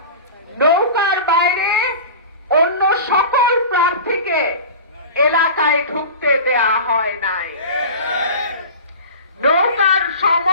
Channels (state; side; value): inverted; both; correlation -0.34